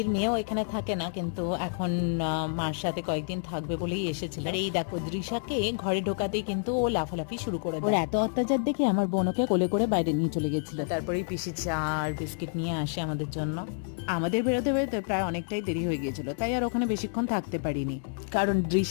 মেয়েও এখানে থাকে না, কিন্তু এখন মার সাথে কয়েকদিন থাকবে বলেই এসেছিল। আর এই দেখো দৃশাকে ঘরে ঢোকাতেই কিন্তু ও লাফালাফি শুরু করে দেয়। ওর এত অত্যাচার দেখে আমার বোনকে কোলে করে বাইরে নিয়ে চলে গেছিল। তারপরেই পিসি চা আর বিস্কিট নিয়ে আসে আমাদের জন্য। আমাদের বেরোতে বেরোতে প্রায় অনেকটাই দেরি হয়ে গিয়েছিল, তাই আর ওখানে বেশিক্ষণ থাকতে পারিনি, কারণ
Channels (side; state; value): right; silent; digital silence